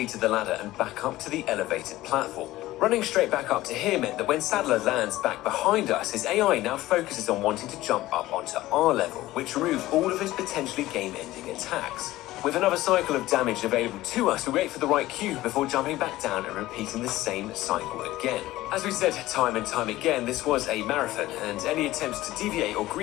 to the ladder and back up to the elevated platform. Running straight back up to here meant that when Sadler lands back behind us, his AI now focuses on wanting to jump up onto our level, which removed all of his potentially game-ending attacks. With another cycle of damage available to us, we wait for the right cue before jumping back down and repeating the same cycle again. As we said time and time again, this was a marathon, and any attempts to deviate or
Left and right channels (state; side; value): quieter; right; 16.6 dB